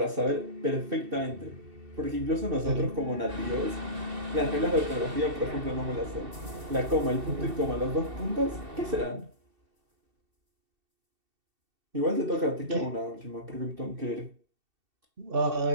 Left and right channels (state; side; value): late; left; 2.7 ms